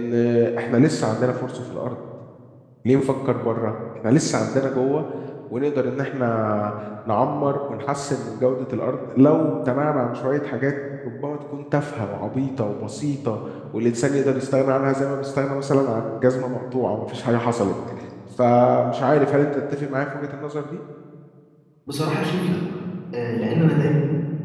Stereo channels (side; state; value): both; identical; correlation 1.00